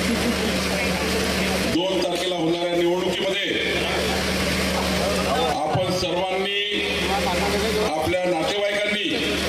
2 तारखेला होणाऱ्या निवडणुकीमध्ये आपण सर्वांनी, आपल्या नातेवाईकांनी,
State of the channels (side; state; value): both; identical; correlation 1.00